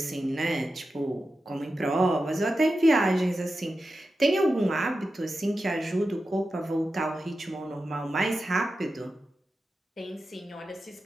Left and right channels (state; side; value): normal; both; correlation 0.91